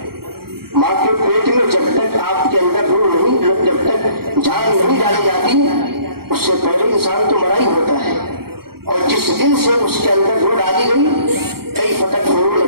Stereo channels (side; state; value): left; late; 0.94 ms